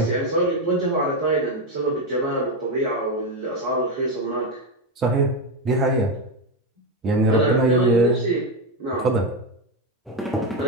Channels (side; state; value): both; normal; correlation 0.10